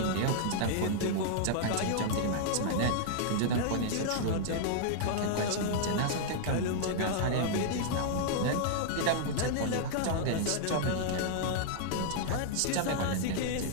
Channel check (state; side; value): different; both; correlation -0.01